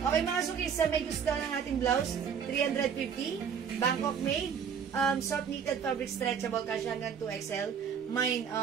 Okay, mga sukisa, may gusto ng ating blouse. 350. Bangkok made. Soft knitted fabric stretchable. Kasi hanggang 2XL. Mine,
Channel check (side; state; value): left; quieter; 7.2 dB